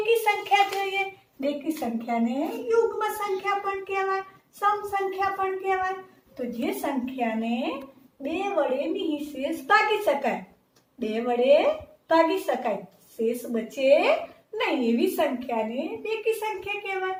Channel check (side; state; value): both; identical; correlation 1.00